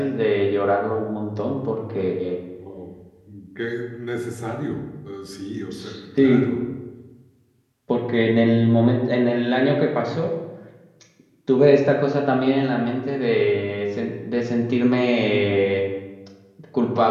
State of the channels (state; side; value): identical; both; correlation 1.00